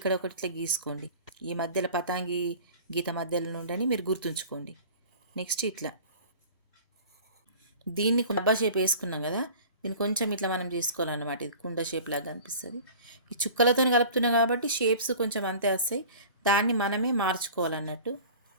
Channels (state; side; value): inverted; both; correlation -0.42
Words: ఒకటి ఇట్లా గీసుకోండి. ఈ మధ్యలో పతాంగి గీత మధ్యలో నుండి మీరు గుర్తుంచుకోండి. నెక్స్ట్ ఇట్లా దీన్ని డబ్బా షేప్ వేసుకున్నాం కదా, దీన్ని కొంచెం ఇట్లా మనం చేసుకోవాలన్నమాట. ఇది కుండ షేప్ లాగా అనిపిస్తుంది. ఈ చుక్కలతో కలుపుతున్నాం కాబట్టి షేప్స్ కొంచెం అంతే వస్తాయి. దాన్ని మనమే మార్చుకోవాలన్నట్టు.